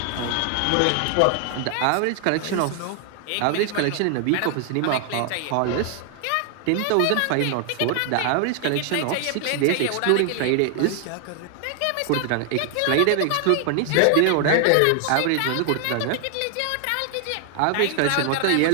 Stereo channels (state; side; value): different; both; correlation 0.00